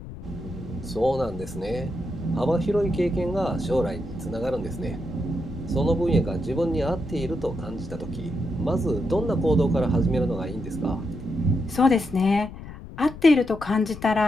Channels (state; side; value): noise; left; rumble, 13 dB below the sound